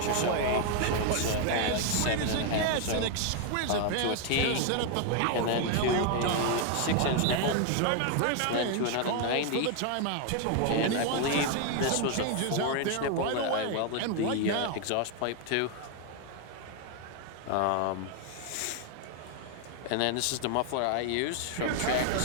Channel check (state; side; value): different; both; correlation 0.00